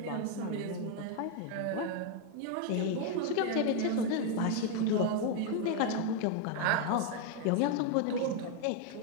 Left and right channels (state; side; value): different; both; correlation 0.01